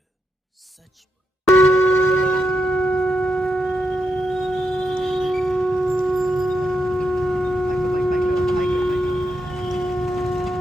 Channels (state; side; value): normal; both; correlation 0.83